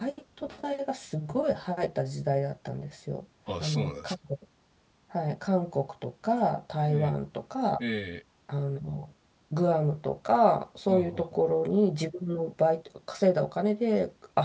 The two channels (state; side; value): identical; both; correlation 1.00